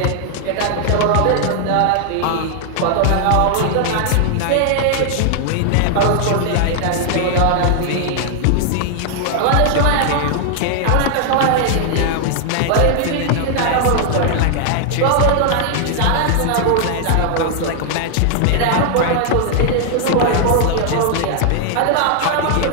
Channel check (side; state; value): both; different; correlation 0.00